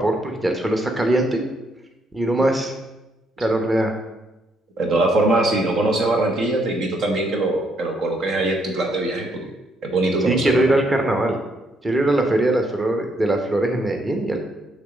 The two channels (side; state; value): both; normal; correlation 0.72